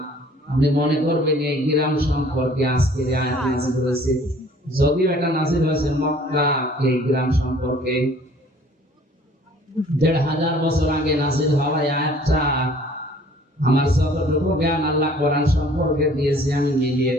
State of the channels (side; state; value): both; normal; correlation 0.54